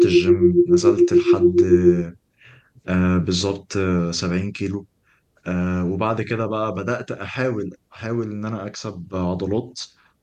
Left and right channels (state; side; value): identical; both; correlation 1.00